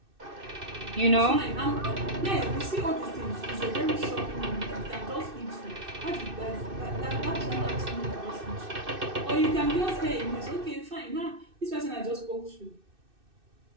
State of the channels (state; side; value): late; left; 2.6 ms